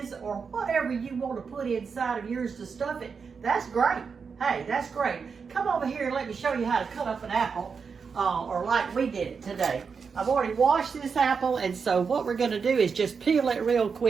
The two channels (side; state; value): left; quieter; 5.7 dB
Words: or whatever you want to put inside of yours to stuff it. That's great. Hey, that's great. Come over here and let me show you how to cut up an apple, or like we did it today. I've already washed this apple, and so what we're going to do is just peel it real